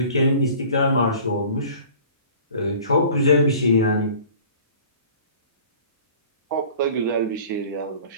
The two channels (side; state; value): both; inverted; correlation -0.46